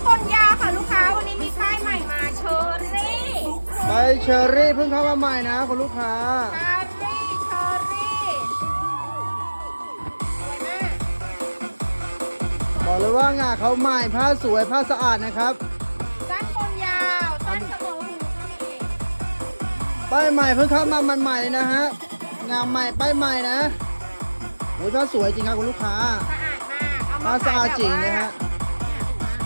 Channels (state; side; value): inverted; both; correlation -1.00